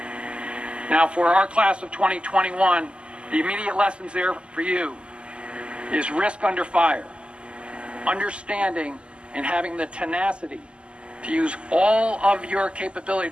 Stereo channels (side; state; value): left; late; 0.051 ms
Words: Now, for our class of 2021, the immediate lessons there for you is risk under fire, understanding and having the tenacity to use all of your capability